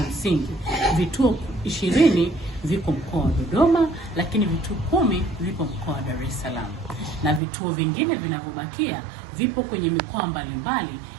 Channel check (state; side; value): drops out; left; at 7.4 s